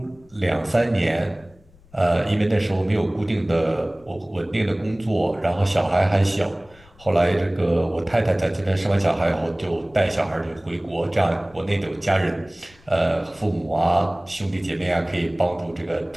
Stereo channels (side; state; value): left; noise; rumble, 28 dB below the sound